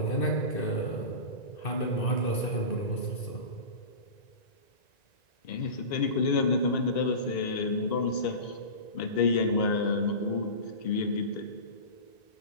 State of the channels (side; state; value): right; late; 1.9 ms